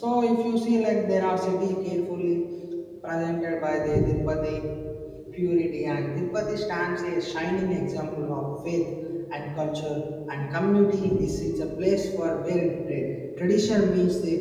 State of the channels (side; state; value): both; identical; correlation 1.00